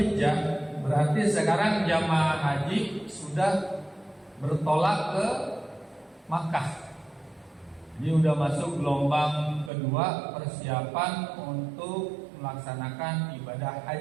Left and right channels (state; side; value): drops out; left; at 9.7 s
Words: berarti sekarang jamaah haji sudah bertolak ke Makkah. Ini udah masuk gelombang kedua persiapan untuk melaksanakan ibadah